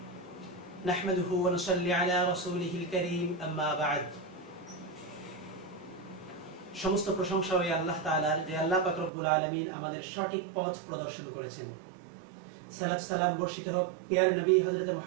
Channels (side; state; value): left; drops out; at 9.1 s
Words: नहमदुहु व नुसल्ली अला रसूलिहिल करीम अम्मा बाद। সমস্ত প্রশংসা ওই আল্লাহ তাআলার যে আল্লাহ পাক রব্বুল আলামিন আমাদের সঠিক পথ প্রদর্শন করেছেন। সালাত সালাম বর্ষিত হোক প্রিয় নবী হযরত